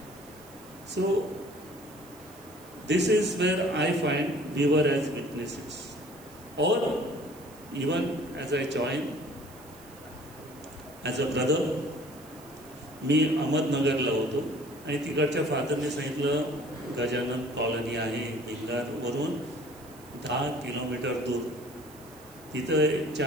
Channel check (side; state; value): right; noise; hiss, 22 dB below the sound